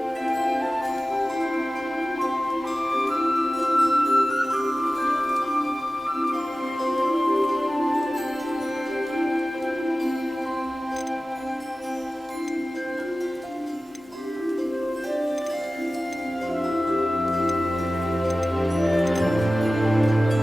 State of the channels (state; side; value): normal; both; correlation 0.96